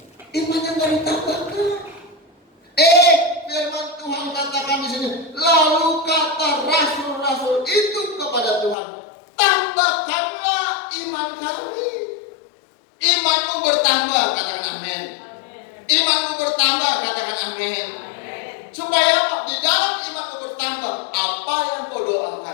Imannya nggak ditambahkan. Firman Tuhan katakan di sini. Lalu kata rasul-rasul itu kepada Tuhan, tambahkanlah iman kami. Imanmu bertambah, katakan amin. Imanmu bertambah, katakan amin. Supaya apa? Di dalam imanmu bertambah, apa yang kau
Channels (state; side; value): drops out; right; at 8.8 s